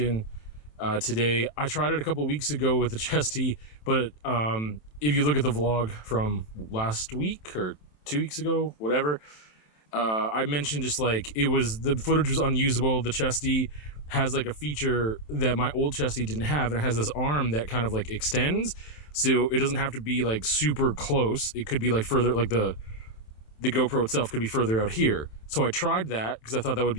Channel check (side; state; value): right; late; 27 ms